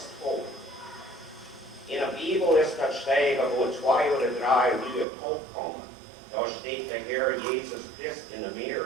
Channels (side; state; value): left; drops out; at 5.1 s